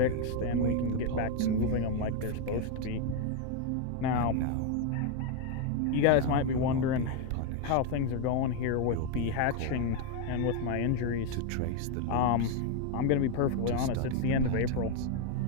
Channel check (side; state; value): both; different; correlation 0.01